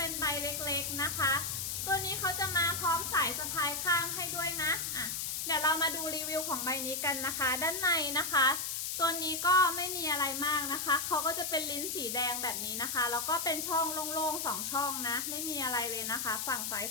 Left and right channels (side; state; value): left; noise; hiss, 2 dB below the sound